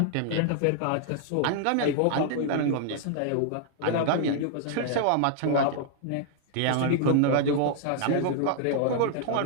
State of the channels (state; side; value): different; both; correlation -0.01